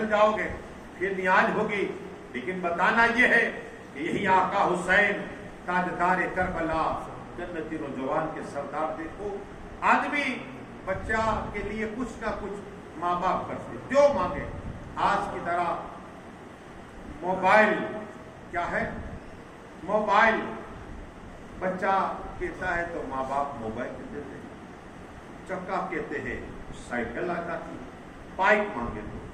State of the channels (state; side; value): identical; both; correlation 1.00